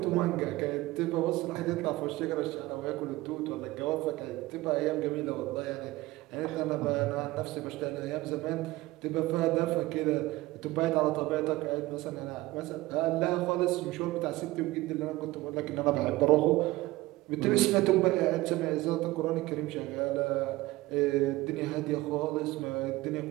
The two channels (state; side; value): quieter; left; 18.9 dB